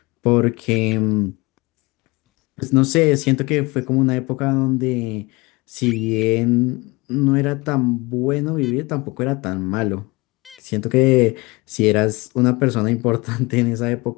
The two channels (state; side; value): quieter; right; 24.2 dB